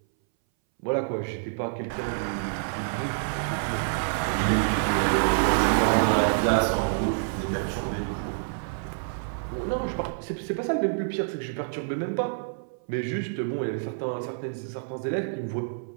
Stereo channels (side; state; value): left; silent; 59 dB below the other